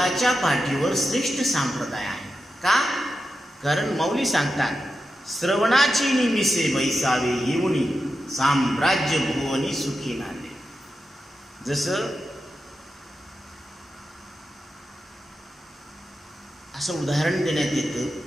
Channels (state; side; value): normal; both; correlation 0.90